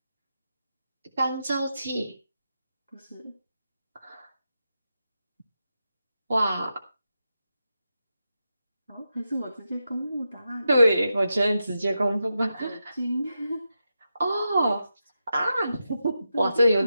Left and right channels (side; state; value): both; inverted; correlation -0.88